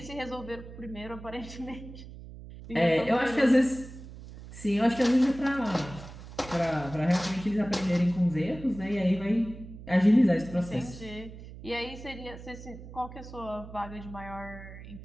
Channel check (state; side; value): noise; right; hum, 14 dB below the sound